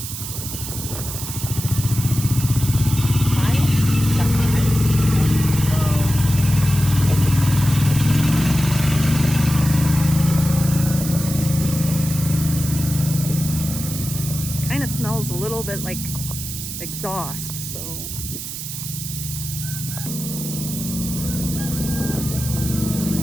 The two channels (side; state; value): right; noise; hiss, 7 dB below the sound